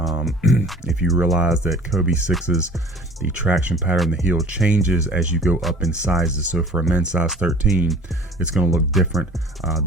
If you realize that kvegaskickz's, the traction pattern, the heel changes as you go up in sizes. So for a men's size 13, it's going to look different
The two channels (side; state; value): both; normal; correlation 0.48